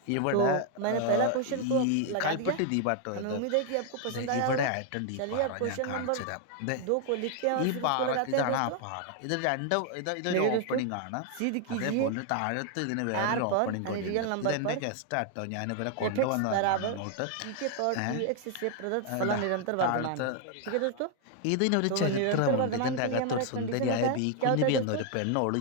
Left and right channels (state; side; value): different; both; correlation 0.00